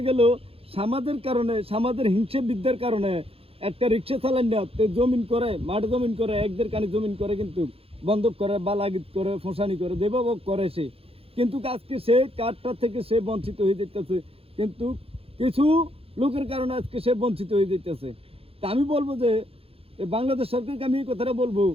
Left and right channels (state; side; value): late; left; 0.28 ms